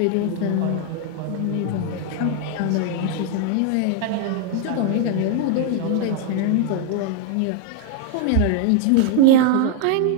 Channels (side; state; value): both; different; correlation 0.00